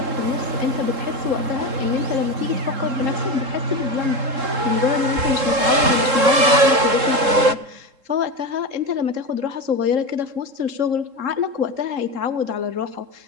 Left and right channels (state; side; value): late; left; 3.7 ms